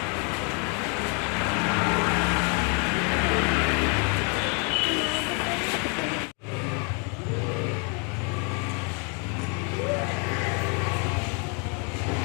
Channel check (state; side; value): quieter; right; 36.1 dB